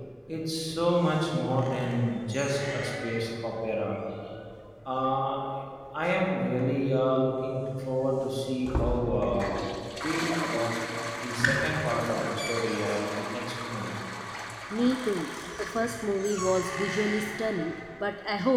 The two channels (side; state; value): both; identical; correlation 1.00